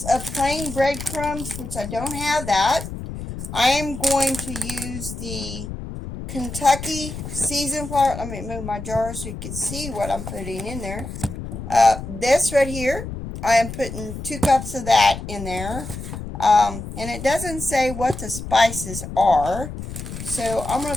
of plain breadcrumbs, which I don't have that. I am going to use the Kentucky seasoned flour. Let me move my jar so you can see what I'm putting in there. This right here, I am putting 2 cups of that in there. And it doesn't say what the spices are. So I'm going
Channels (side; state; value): left; noise; rumble, 9 dB below the sound